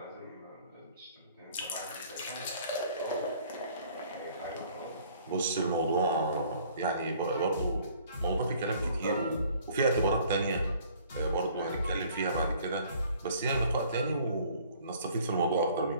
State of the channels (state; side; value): inverted; both; correlation -0.56